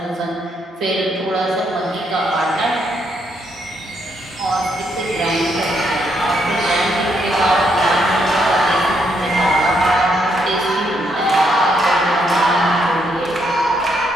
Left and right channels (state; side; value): normal; both; correlation 0.75